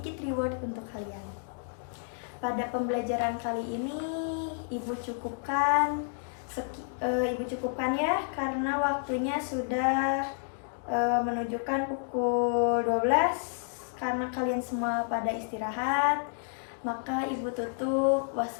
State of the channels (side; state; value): right; silent; digital silence